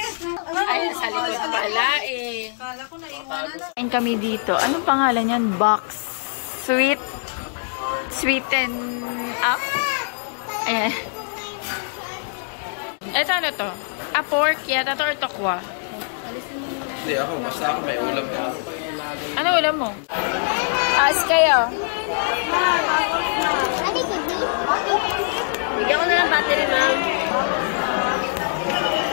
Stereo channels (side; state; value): right; silent; digital silence